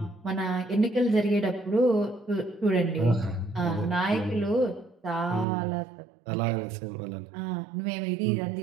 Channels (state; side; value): drops out; left; at 5.5 s